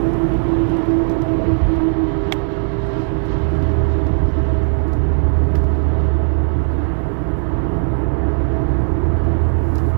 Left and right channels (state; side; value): silent; left; 68 dB below the other